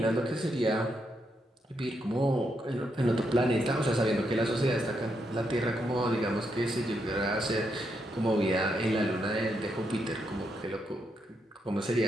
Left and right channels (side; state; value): both; normal; correlation 0.80